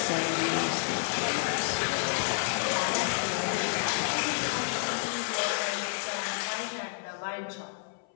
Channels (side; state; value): right; silent; 58 dB below the other